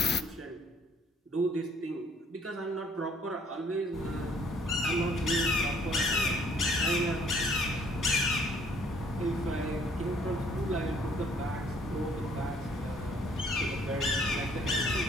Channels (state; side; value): normal; both; correlation 0.60